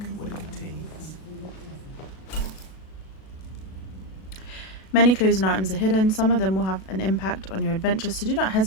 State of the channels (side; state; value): right; late; 37 ms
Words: what it contains. Many clues and items are hidden. Some of them will have an impact on your adventure, so do not